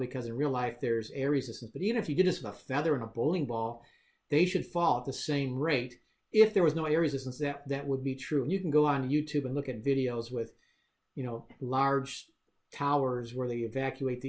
in real life there's air resistance. But even if you did this with a feather and a bowling ball, they should fall at the same rate. If there was no air resistance, that would be true. And you can go on YouTube and look at videos with, large towers where they evacuate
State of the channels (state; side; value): identical; both; correlation 1.00